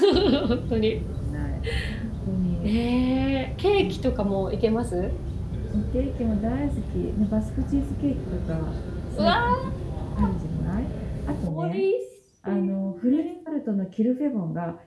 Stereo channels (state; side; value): identical; both; correlation 1.00